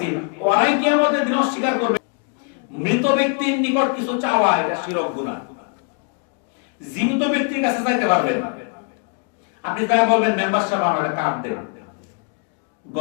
ওরাই কিয়ামতের দিন অস্বীকার করবে। মৃত ব্যক্তির নিকট কিছু চাওয়া এটা শিরক গুনাহ। জীবিত ব্যক্তির কাছে চাইতে পারবেন। আপনি তাই বলবেন, মেম্বার সাহেব আমার একটা কার্ড দেন,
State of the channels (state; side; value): quieter; right; 39.7 dB